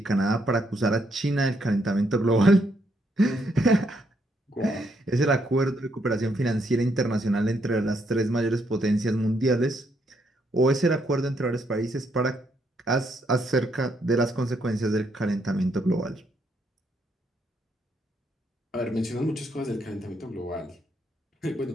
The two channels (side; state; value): both; normal; correlation 0.75